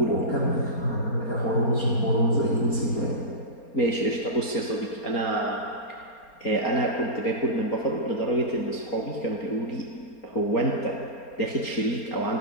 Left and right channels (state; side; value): late; right; 4.3 ms